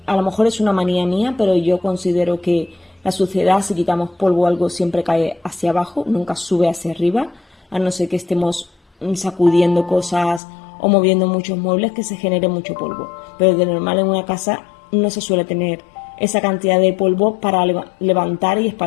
A lo mejor es una manía mía, pero yo considero que la suciedad, si quitamos polvo o algo, siempre cae hacia abajo, nunca sube hacia arriba, a no ser que estemos sacudiendo cosas o moviendo muchos muebles, que se genere mucho polvo. Pero de normal en una casa no se suele tener esa cantidad de polvo para levantar y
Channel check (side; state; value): right; drops out; at 10.4 s